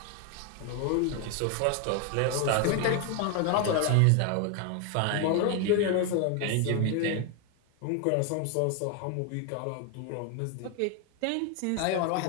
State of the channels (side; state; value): both; different; correlation 0.01